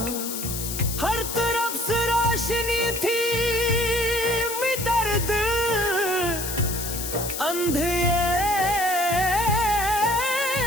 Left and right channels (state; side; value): noise; left; hiss, 5 dB below the sound